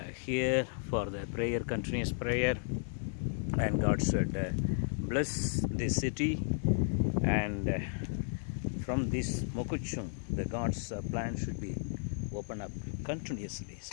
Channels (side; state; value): right; silent; 55 dB below the other